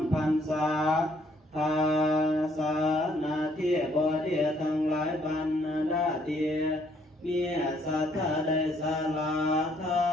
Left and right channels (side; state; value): both; normal; correlation 0.66